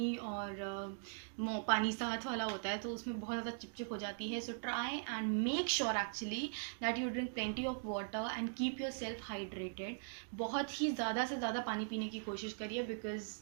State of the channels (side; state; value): left; silent; digital silence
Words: और पानी साथ वाला होता है तो उसमें बहुत ज़्यादा चिपचिप हो जाती है. So try and make sure actually that you drink plenty of water and keep your self hydrated. बहुत ही ज़्यादा से ज़्यादा पानी पीने की कोशिश करिए because